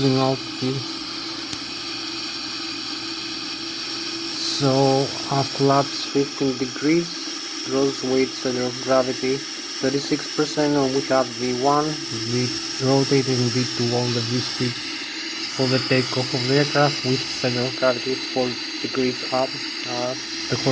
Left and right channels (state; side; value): identical; both; correlation 1.00